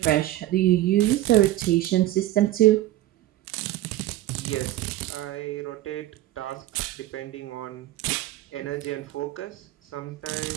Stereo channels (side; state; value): left; quieter; 15.2 dB